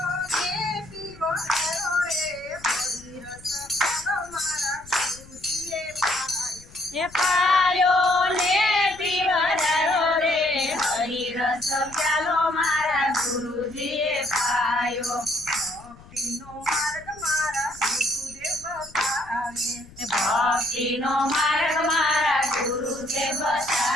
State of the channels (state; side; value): noise; left; rumble, 22 dB below the sound